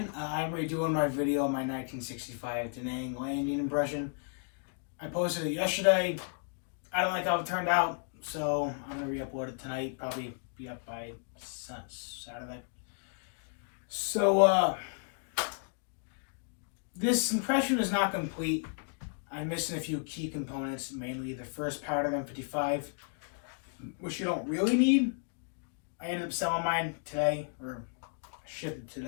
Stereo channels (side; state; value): right; silent; 56 dB below the other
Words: I'm redoing my video on my 1965 Da Nang landing impression. I posted it yesterday. I don't like how it turned out, so I'm going to re-upload it tonight. Probably be up by Saturday. So, this impression is not complete. I'm missing a few key components, mainly the first part of M55, which you don't really need. I ended up selling mine today, or shipped it